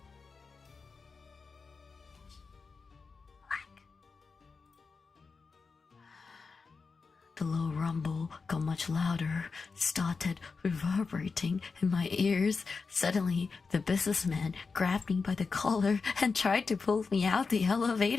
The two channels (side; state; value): right; quieter; 4.7 dB